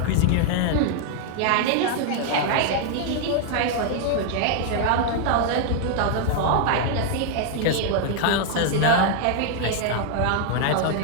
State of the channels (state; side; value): different; both; correlation 0.00